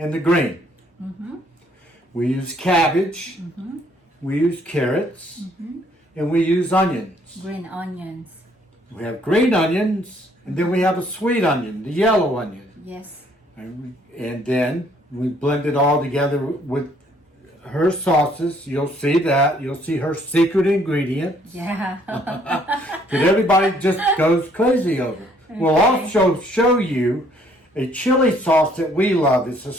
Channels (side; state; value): both; normal; correlation 0.64